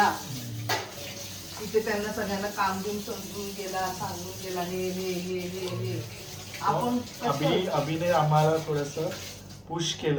तिथे त्यांना सगळ्यांना काम घेऊन समजून गेला, सांगून गेला हे हे हे हे हे. आपण कसं- अभिने आम्हाला थोडस पुश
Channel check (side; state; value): both; identical; correlation 1.00